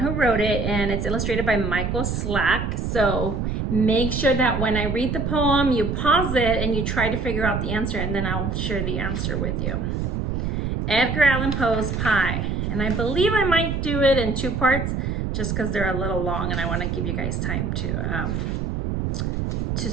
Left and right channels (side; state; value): right; noise; rumble, 1 dB below the sound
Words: who wrote it, and it's illustrated by Michael Slack. So make sure that when I read the poem, you pause it and you try to figure out the answer, and then I'll share the answer with you. Edgar Allan Poe's Pie. And I believe I might do it in two parts just because they're a little long and I want to give you guys time to